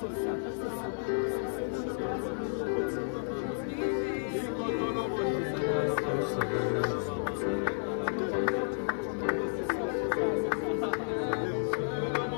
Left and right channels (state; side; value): silent; right; 57 dB below the other